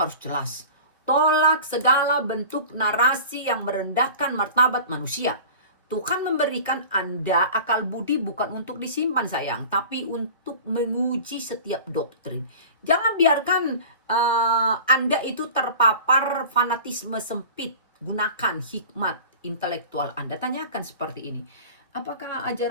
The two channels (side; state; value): both; inverted; correlation -0.39